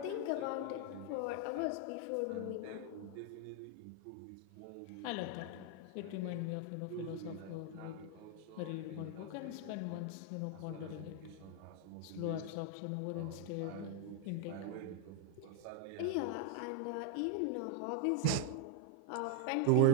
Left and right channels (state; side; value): different; both; correlation 0.00